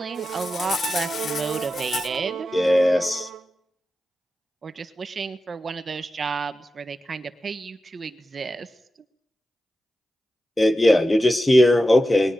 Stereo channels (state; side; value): normal; both; correlation 0.91